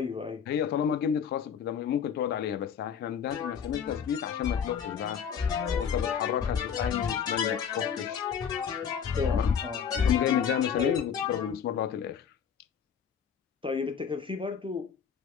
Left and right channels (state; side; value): quieter; right; 7.6 dB